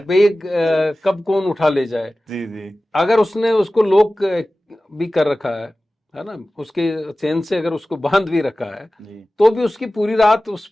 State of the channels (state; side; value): normal; both; correlation 0.96